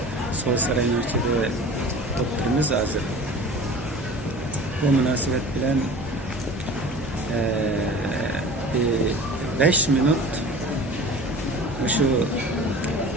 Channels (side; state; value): both; normal; correlation 0.40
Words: sosyal üniversitede doktorumuz hazır. Bu münasebet bilen 5 minut şu